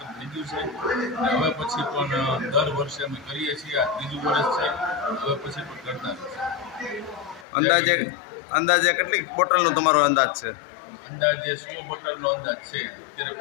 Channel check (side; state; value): right; drops out; at 7.5 s